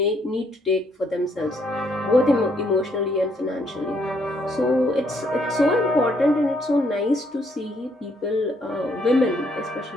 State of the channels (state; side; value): normal; both; correlation 0.70